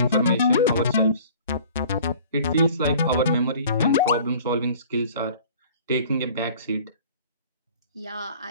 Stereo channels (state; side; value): inverted; both; correlation -0.49